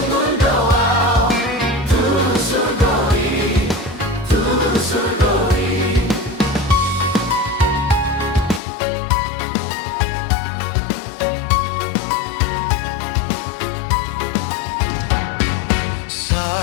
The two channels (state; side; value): drops out; right; at 8.6 s